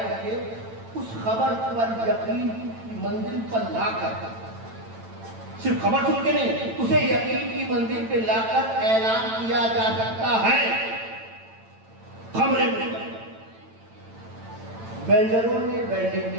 سکے، اس خبر پر یقین کی منزل پر لا کر، صرف خبر سن کے نہیں، اسے یقین کی منزل پہ لا کر اعلان کیا جا سکتا ہے۔ خبریں ویلڈروں نے ویلڈنگ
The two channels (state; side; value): late; left; 9.0 ms